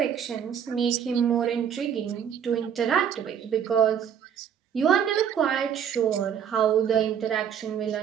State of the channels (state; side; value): quieter; left; 8.4 dB